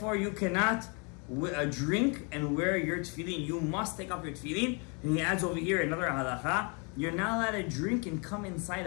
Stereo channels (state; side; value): quieter; right; 34.5 dB